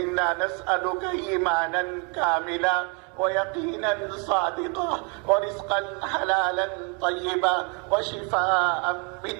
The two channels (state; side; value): quieter; left; 34.7 dB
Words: نسألك إيمانا كاملا ويقينا صادقا ورزقا حلالا طيبا وشفاء